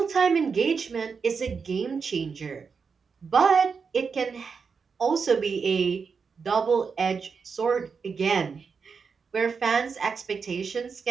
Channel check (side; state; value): left; quieter; 5.5 dB